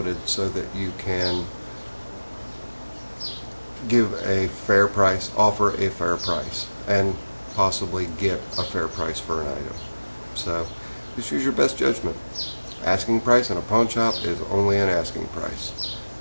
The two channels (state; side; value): inverted; both; correlation -1.00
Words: so that you can give a fair price, offer a fair price, and possibly get a fair price for an item. So just use your best judgment. Asking price in a pawn shop is only an asking price.